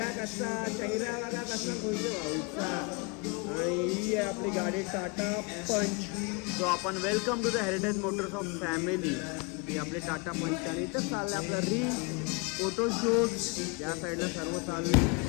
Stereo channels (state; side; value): quieter; right; 30.8 dB